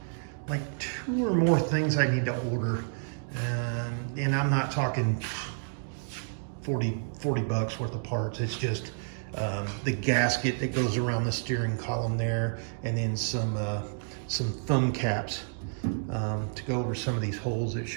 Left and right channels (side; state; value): left; silent; digital silence